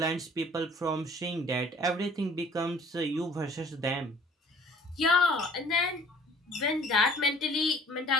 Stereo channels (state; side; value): normal; both; correlation 0.53